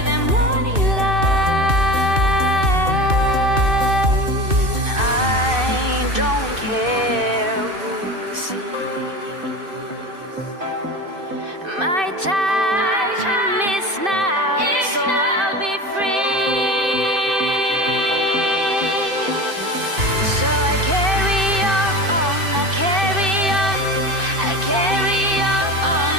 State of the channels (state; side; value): late; left; 2.6 ms